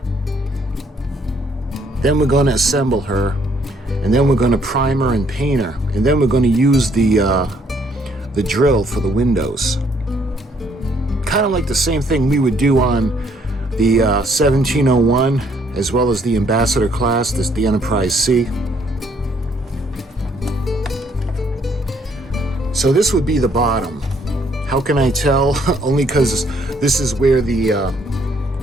Then we're going to assemble her. And then we're going to primer and paint her, and then we're going to use the drill for the windows. Kind of like the same thing we would do on the 1701, as well as the Ambassador class, the Enterprise C. So this would be the bottom. How can I tell? Only because this is where the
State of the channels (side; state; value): both; normal; correlation 0.67